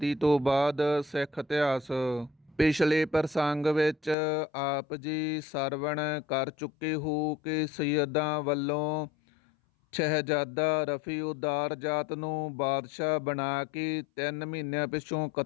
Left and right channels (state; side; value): drops out; right; at 4.2 s